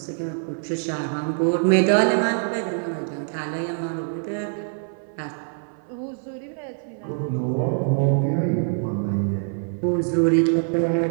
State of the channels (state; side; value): silent; left; 59 dB below the other